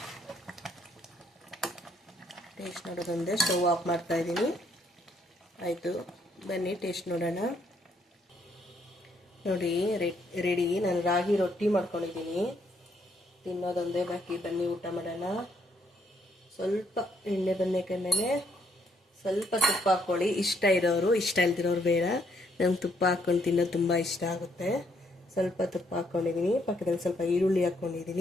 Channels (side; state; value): both; normal; correlation 0.71